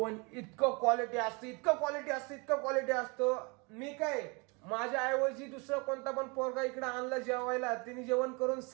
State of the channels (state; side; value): quieter; left; 30.0 dB